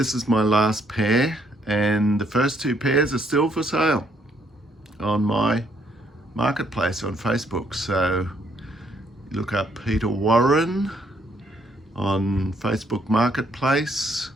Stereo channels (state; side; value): normal; both; correlation 0.70